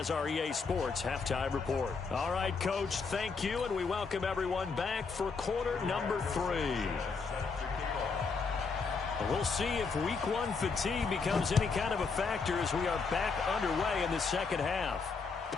our EA Sports halftime report. All right, Coach, thank you, and we welcome everyone back for quarter number 3. We'll see if week 1 fatigue becomes any kind of a factor as we are back underway in the second half.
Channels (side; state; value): right; quieter; 4.9 dB